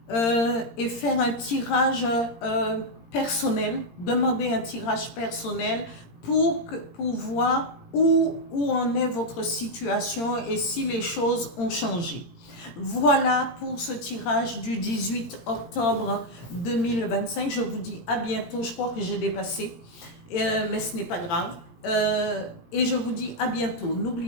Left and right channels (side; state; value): right; late; 17 ms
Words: et faire un tirage personnel, demander un tirage personnel pour voir où en est votre situation et si les choses ont changé. Voilà pour ce tirage du 18 octobre 2025. Je vous dis à bientôt. Je crois que j'ai dépassé, mais ce n'est pas grave. Et je vous dis à bientôt.